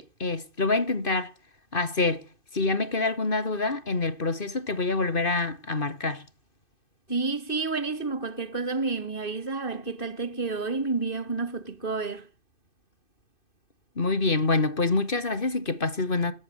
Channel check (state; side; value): late; right; 2.6 ms